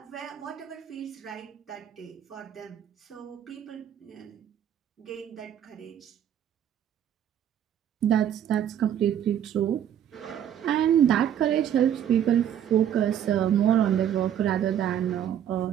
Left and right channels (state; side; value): quieter; left; 9.8 dB